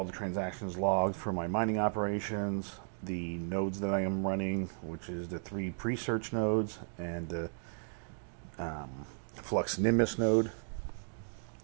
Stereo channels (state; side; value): silent; left; digital silence